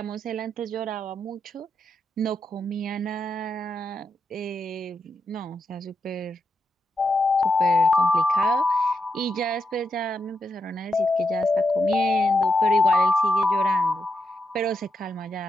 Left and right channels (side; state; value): both; normal; correlation 0.84